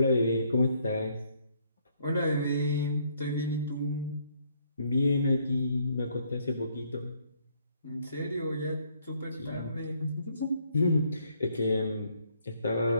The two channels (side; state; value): both; inverted; correlation -0.68